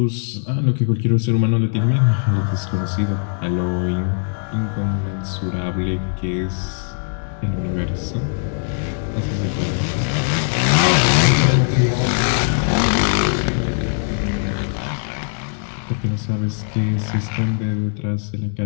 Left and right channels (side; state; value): right; silent; digital silence